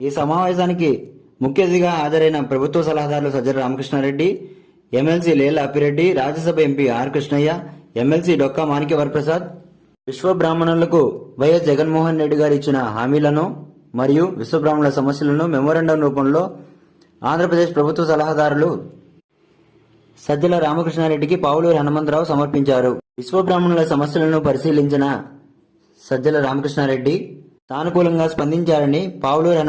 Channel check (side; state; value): both; identical; correlation 1.00